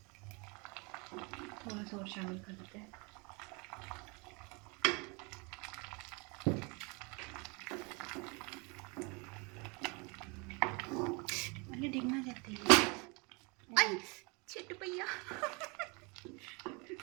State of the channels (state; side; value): quieter; left; 30.1 dB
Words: चम्मच और शामिल कर देते हैं। अरे डिगना जाती है। आई छिट भैया।